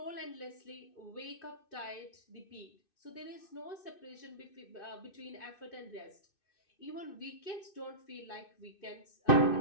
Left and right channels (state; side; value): late; right; 2.6 ms